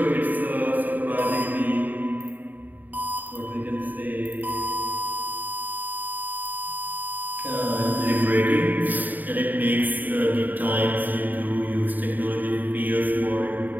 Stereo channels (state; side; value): late; left; 0.086 ms